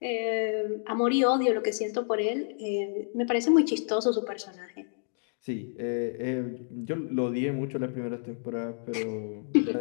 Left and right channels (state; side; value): silent; right; digital silence